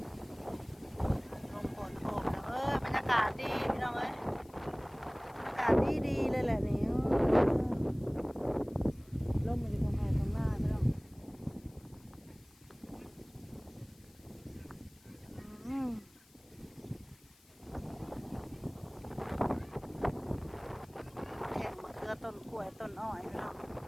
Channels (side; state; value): left; noise; hiss, 28 dB below the sound